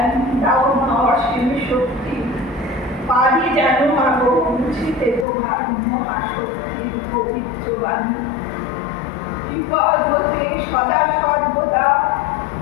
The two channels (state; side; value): drops out; right; at 5.2 s